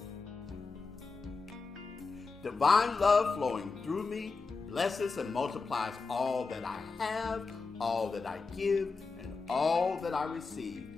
Divine love flowing through me blesses and multiplies all that I have, all that I give, and all that I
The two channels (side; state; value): right; quieter; 4.4 dB